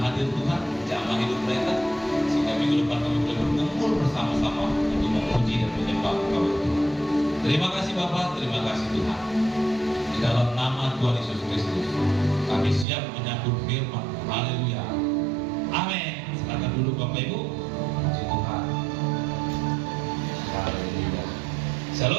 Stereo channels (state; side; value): drops out; left; at 12.9 s